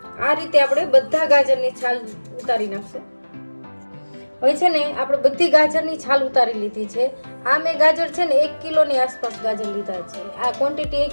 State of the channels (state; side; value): inverted; both; correlation -1.00